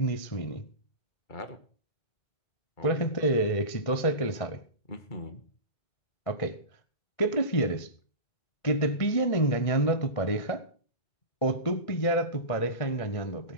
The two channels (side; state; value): right; late; 1.6 ms